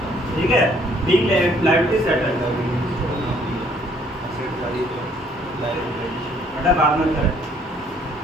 ठीक है, बिग लायबिलिटी सेटल बेटा बाद में करें।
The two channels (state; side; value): normal; both; correlation 0.63